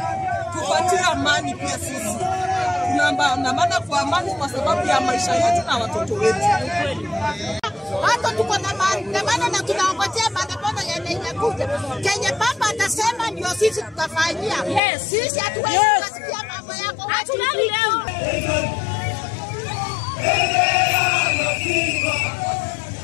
tupatie amani pia sisi. Tunaandamana kwa amani kwa sababu ya maisha yetu na watoto wetu. Hata tuko na maandamano na tunaongojea maandamano yanayokuja. Kenya baba atasema ndio sisi tutafanyia. Yes. Sisi hatuwezi kusikia mambo yako. Hatuna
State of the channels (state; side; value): drops out; right; at 14.8 s